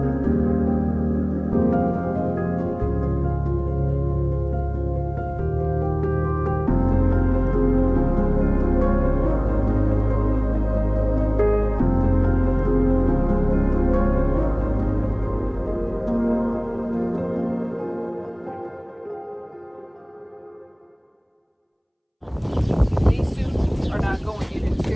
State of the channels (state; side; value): identical; both; correlation 1.00